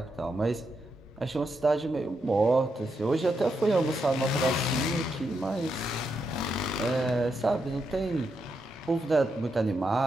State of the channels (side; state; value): both; normal; correlation 0.82